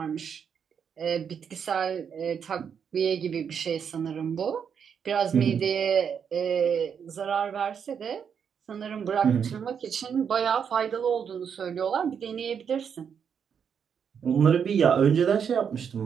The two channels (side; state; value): left; quieter; 7.3 dB